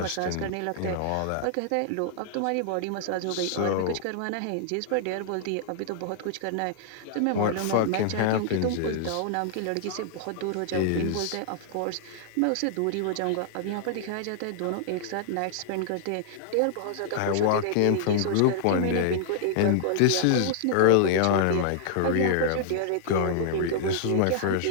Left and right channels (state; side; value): different; both; correlation -0.01